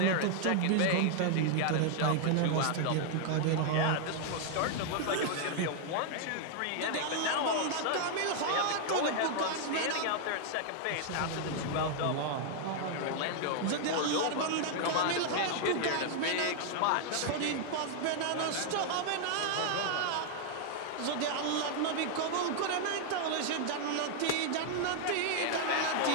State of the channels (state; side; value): different; both; correlation 0.00